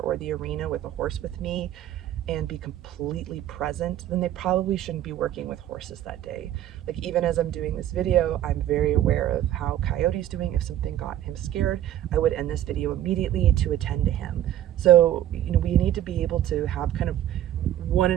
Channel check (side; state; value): left; quieter; 12.1 dB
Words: or the arena with a horse with me and be completely present, then they probably shouldn't be working with horses that day. Like even as I'm doing this video, I'm very aware of how Coyote's doing. If something got him scared, I would end this video immediately to attend to him. So, we need to be able to have kind of